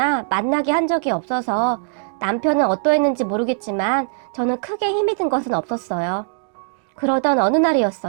만나게 한 적이 없어서 남편은 어떠했는지 모르겠지만 저는 크게 힘이 든 것은 없었어요. 그러던 어느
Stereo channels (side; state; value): left; silent; digital silence